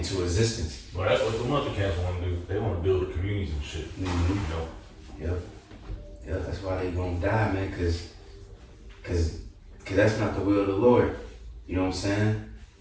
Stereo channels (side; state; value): both; identical; correlation 1.00